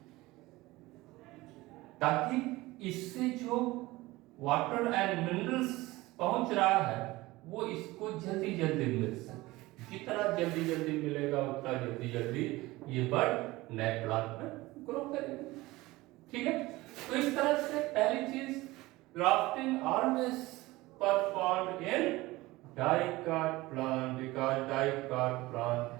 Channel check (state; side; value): quieter; left; 19.7 dB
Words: ताकि इससे जो वाटर एंड मिनरल्स पहुंच रहा है वो इसको जल्दी जल्दी मिल सके। जितना जल्दी जल्दी मिलेगा उतना जल्दी जल्दी ये बर्ड नए प्लांट में ग्रो करेगा, ठीक है। तो इस तरह से पहली चीज, grafting always performed in dicot plant because dicot plant